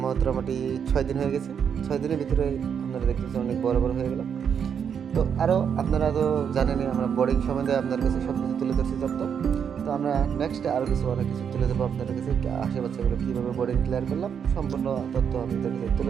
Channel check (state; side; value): quieter; left; 7.5 dB